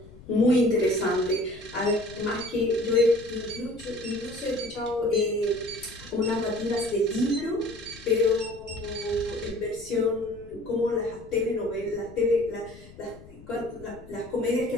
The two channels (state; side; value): noise; left; rumble, 20 dB below the sound